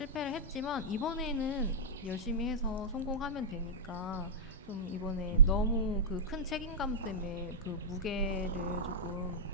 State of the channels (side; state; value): both; normal; correlation -0.13